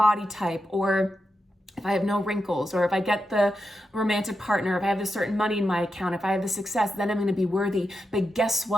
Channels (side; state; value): both; normal; correlation 0.87